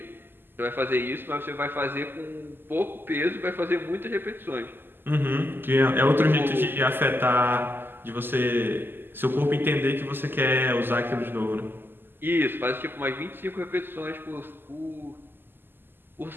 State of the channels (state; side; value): late; left; 0.097 ms